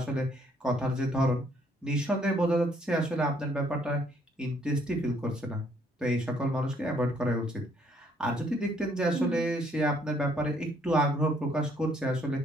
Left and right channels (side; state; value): both; normal; correlation 0.66